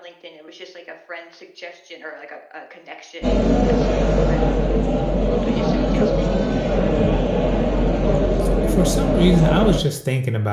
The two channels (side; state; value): both; identical; correlation 1.00